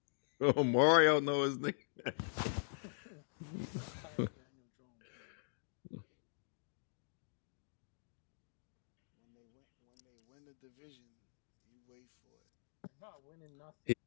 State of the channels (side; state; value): right; silent; digital silence